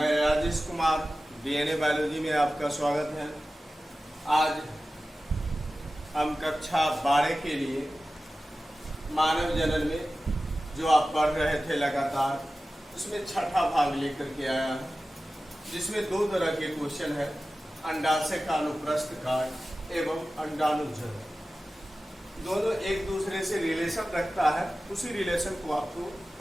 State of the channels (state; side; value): normal; both; correlation 0.95